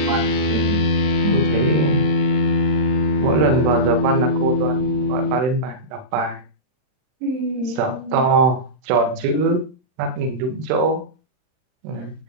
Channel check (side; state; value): left; late; 39 ms